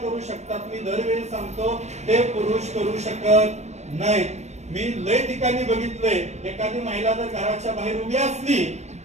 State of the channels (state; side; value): late; left; 0.32 ms